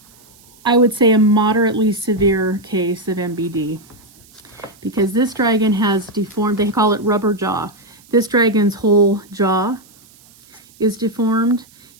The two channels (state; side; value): noise; right; hiss, 27 dB below the sound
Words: I would say, a moderately severe case of MBD, because this dragon has deformed, they call it rubber jaw. This dragon's whole jaw is deformed.